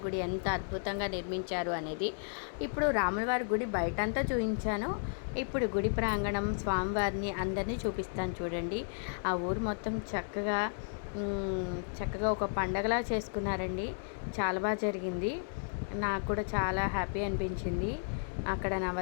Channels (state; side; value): silent; right; digital silence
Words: గుడి ఎంత అద్భుతంగా నిర్మించారు అనేది. ఇప్పుడు రాములవారి గుడి బయటంతా చూపించాను, ఇప్పుడు గుడి ప్రాంగణం స్వామివారిని అందరినీ చూపిస్తాను చూడండి. ఆ ఊరు మొత్తం చక్కగా ఒక పండగలా చేసుకున్నారండి. చాలా బాగా జరిగింది, నాకు కూడా చాలా హ్యాపీ అనిపించింది. అక్కడ